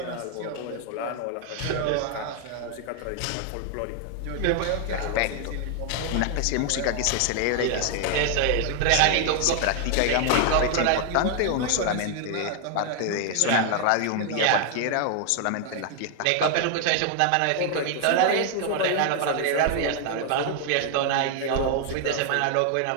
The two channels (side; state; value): both; different; correlation 0.00